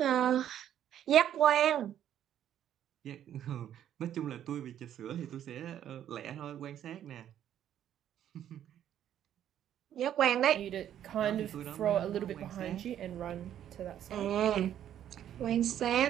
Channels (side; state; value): left; quieter; 10.6 dB